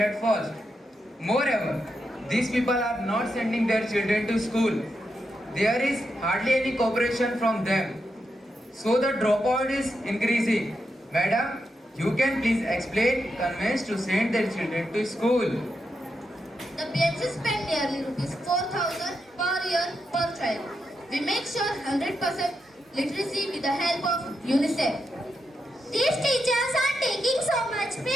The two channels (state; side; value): normal; both; correlation 0.85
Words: first. Moreover, these people are not sending their children to school. There is hardly any cooperation from them. So the dropout is increasing. Madam, You can please explain convince to send their children to school. The PHC spend nearly rupees 4,000 per year per child. We make sure 100% literacy with the help of UNICEF. These teachers are taking so much